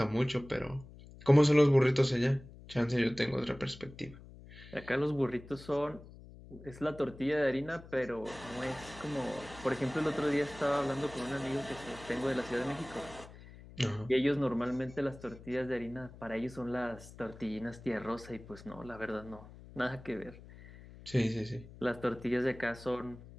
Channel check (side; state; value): left; noise; hum, 18 dB below the sound